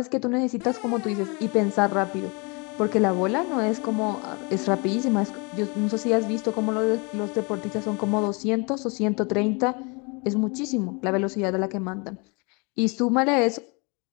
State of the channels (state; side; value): quieter; right; 30.8 dB